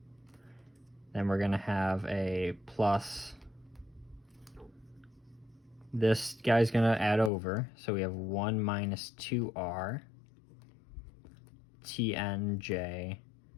Then we're going to have a plus, this guy's going to add over, so we have 1 minus 2r tnj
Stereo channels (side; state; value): right; drops out; at 7.3 s